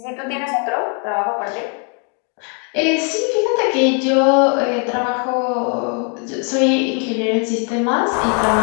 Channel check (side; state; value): right; quieter; 38.3 dB